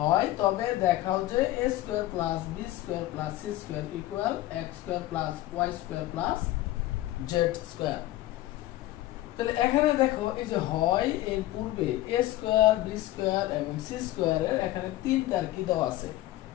তবে দেখাও যে a square plus b square plus c square equal x square plus y square plus z square. তাহলে এখানে দেখো এই যে হয় এর পূর্বে a স্কয়ার b স্কয়ার এবং c স্কয়ারের এখানে তিনটার কি দেওয়া আছে,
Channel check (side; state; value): right; quieter; 15.9 dB